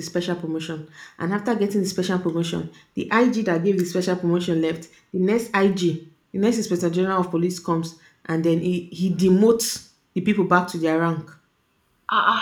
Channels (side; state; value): both; identical; correlation 1.00